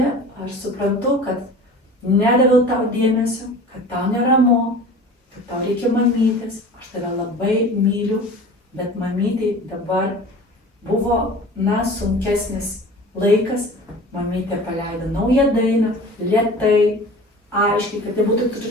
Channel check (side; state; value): both; normal; correlation 0.40